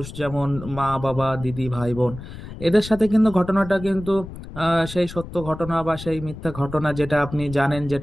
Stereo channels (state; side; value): noise; left; rumble, 13 dB below the sound